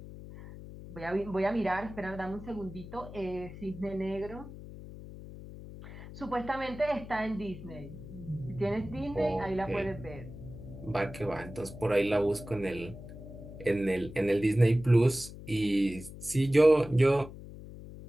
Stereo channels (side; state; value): left; noise; hum, 13 dB below the sound